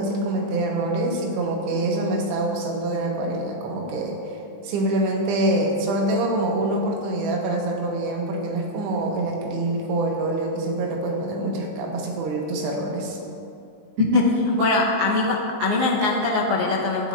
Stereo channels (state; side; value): late; left; 20 ms